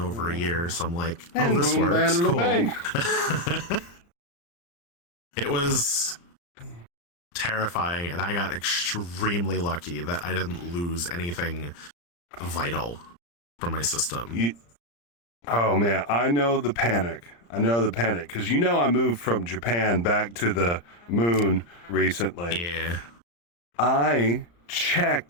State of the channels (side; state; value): right; late; 34 ms